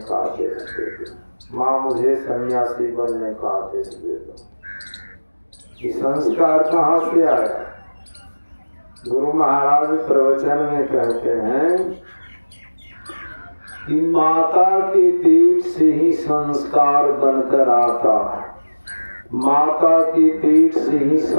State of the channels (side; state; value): both; inverted; correlation -1.00